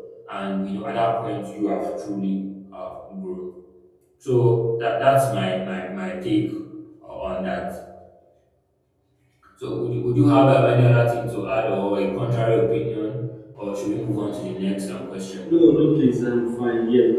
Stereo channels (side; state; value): both; identical; correlation 1.00